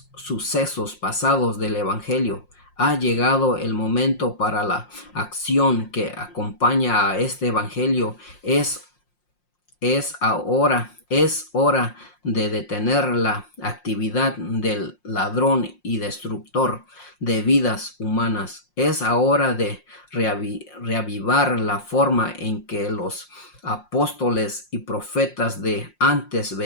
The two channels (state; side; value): late; right; 5.6 ms